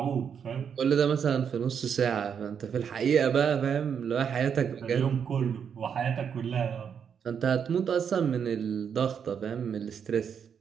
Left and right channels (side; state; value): left; quieter; 7.4 dB